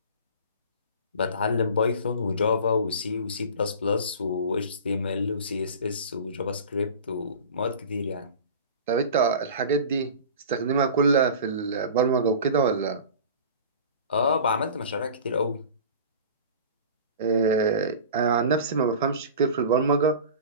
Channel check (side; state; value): both; inverted; correlation -0.37